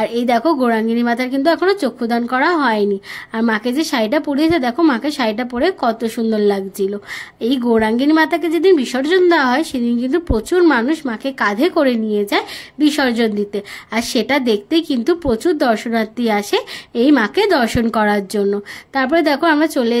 এই দেখো, গৌরাঙ্গিনী মাতার কিন্তু এখনো চক্ষুদান করা হয়নি। আর মাকে যে শাড়িটা পরিয়েছে, দেখো মাকে শাড়িটা পরে কত সুন্দর লাগছিল। এই গৌরাঙ্গিনী মাতাকে যেদিন বিসর্জন দেওয়া হয়, সেদিন কিন্তু প্রচুর মানুষ মাকে কাঁধে করে নিয়ে যায় বিসর্জন দিতে। আর সেটা দেখতে কিন্তু প্রচুর দর্শনার্থী আসে এই মাকে দর্শন করার জন্য। তারপরে দেখো, আমরা চলে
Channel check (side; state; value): both; identical; correlation 1.00